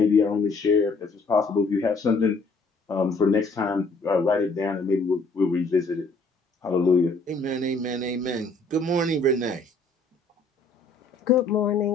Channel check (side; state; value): right; quieter; 3.5 dB